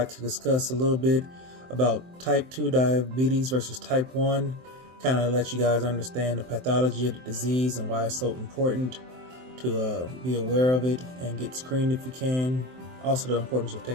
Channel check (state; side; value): late; left; 23 ms